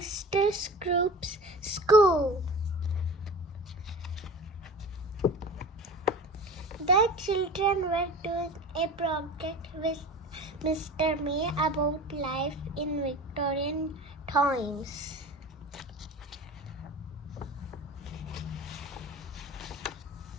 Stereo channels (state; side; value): normal; both; correlation 0.36